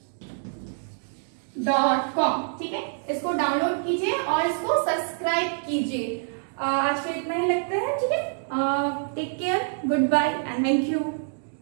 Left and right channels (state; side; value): silent; left; digital silence